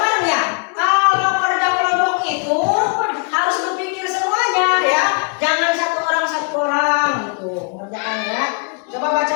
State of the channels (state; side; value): quieter; right; 38.7 dB